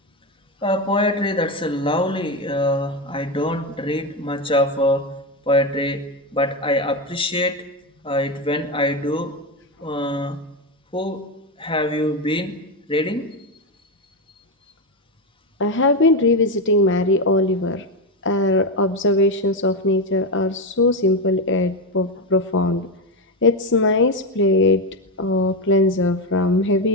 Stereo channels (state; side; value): normal; both; correlation 0.12